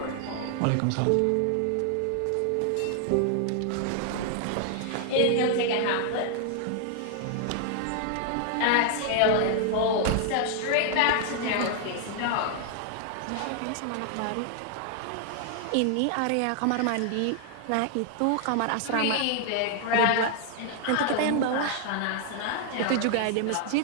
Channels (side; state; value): both; different; correlation 0.00